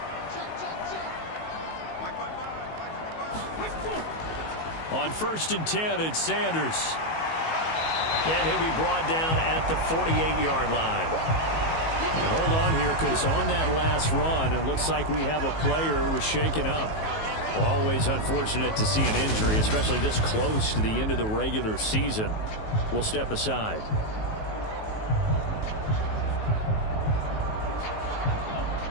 On 1st and 10, it's Sanders. And he'll be brought down at the 48-yard line. And hold on here, because on that last run, it looks like we have a player who was shaken up. Always unfortunate to see an injury, especially this close to the end of the regular season. We'll step aside.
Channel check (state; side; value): late; right; 19 ms